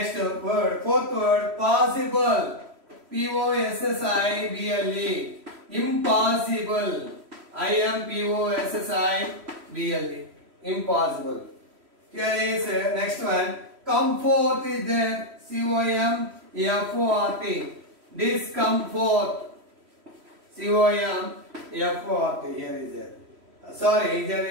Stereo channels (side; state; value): left; late; 3.1 ms